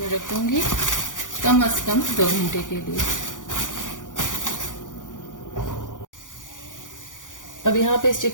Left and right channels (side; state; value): right; late; 0.87 ms